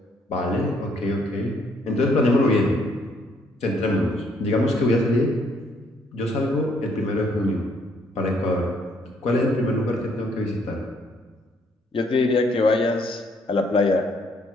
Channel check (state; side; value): normal; both; correlation 0.67